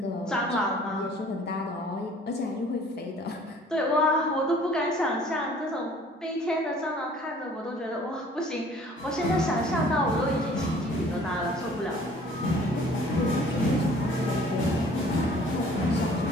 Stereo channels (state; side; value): normal; both; correlation 0.53